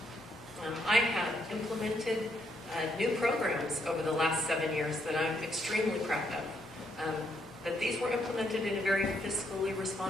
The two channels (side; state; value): both; normal; correlation 0.75